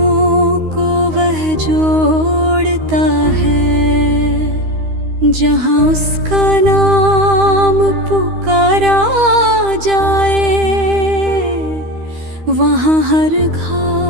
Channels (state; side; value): late; left; 13 ms